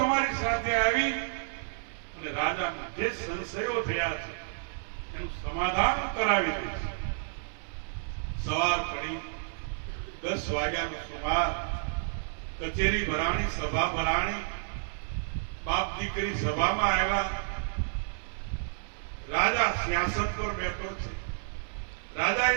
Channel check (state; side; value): silent; left; digital silence